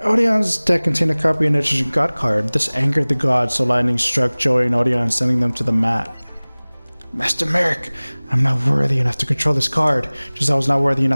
Odeon's deck contained a copy of an interesting god card. This angered the gods, so lightning struck Joey and Odeon, sending them to the mat. Master Merrick, I'm not worthy enough to control this card, just as I was not worthy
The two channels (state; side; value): inverted; both; correlation -1.00